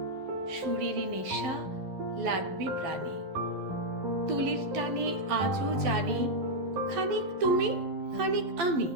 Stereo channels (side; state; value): left; late; 12 ms